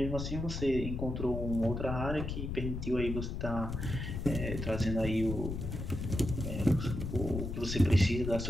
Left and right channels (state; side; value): noise; left; rumble, 4 dB below the sound